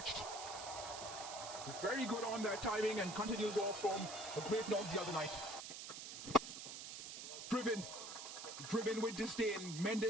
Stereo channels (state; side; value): noise; right; hiss, 8 dB below the sound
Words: Very good on that timing and continues off from a great knock the other night. Driven with disdain.